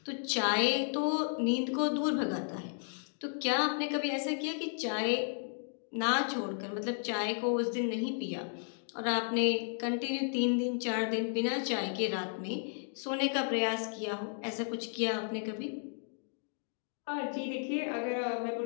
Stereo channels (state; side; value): silent; right; digital silence